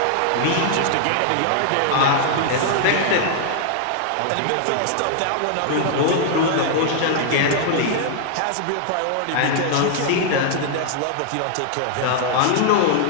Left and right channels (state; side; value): different; both; correlation 0.00